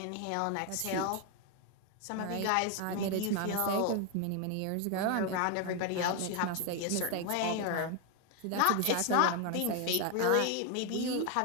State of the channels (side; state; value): both; different; correlation 0.01